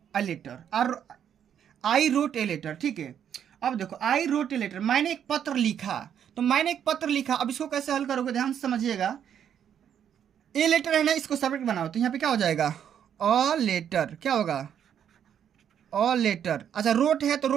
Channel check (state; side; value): quieter; left; 9.0 dB